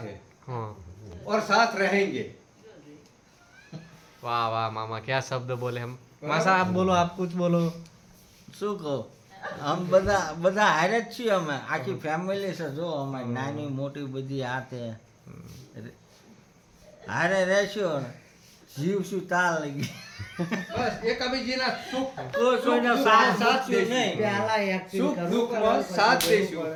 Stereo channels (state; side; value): identical; both; correlation 1.00